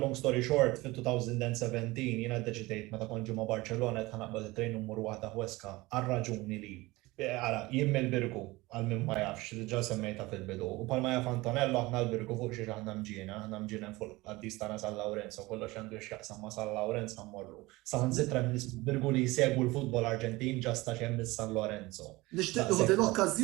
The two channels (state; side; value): quieter; left; 21.0 dB